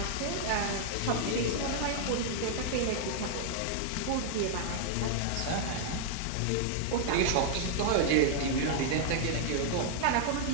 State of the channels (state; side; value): different; both; correlation -0.01